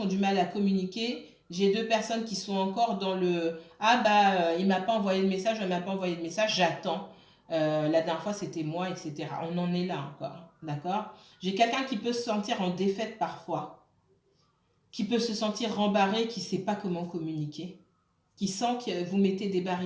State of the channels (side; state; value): both; identical; correlation 1.00